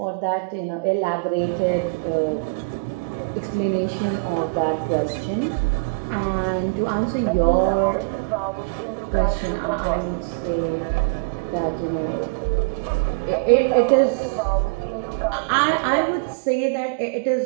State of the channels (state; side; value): quieter; left; 33.3 dB